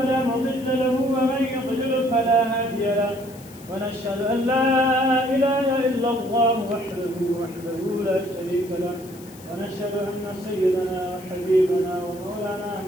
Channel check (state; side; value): noise; left; hiss, 21 dB below the sound